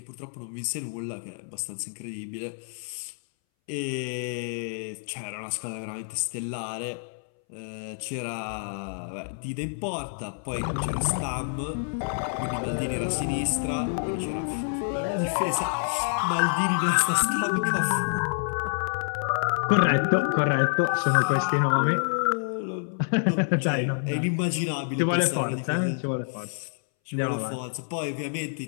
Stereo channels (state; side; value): silent; right; 60 dB below the other